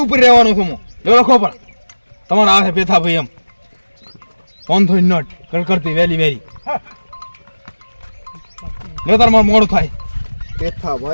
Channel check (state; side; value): inverted; both; correlation -1.00